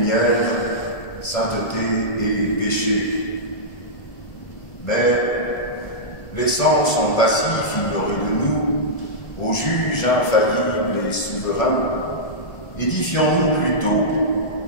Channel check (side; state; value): right; late; 1.7 ms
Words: sainteté et péché. Mais, laissant son passif ignoré de nous, au juge infaillible et souverain, édifions-nous plutôt,